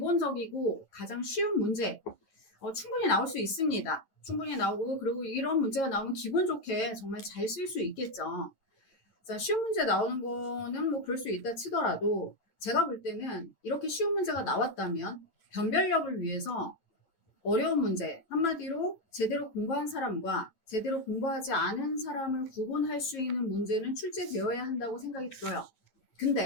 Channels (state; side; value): late; right; 9.0 ms